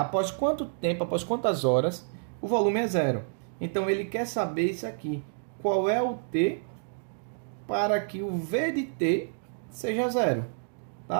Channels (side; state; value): left; silent; digital silence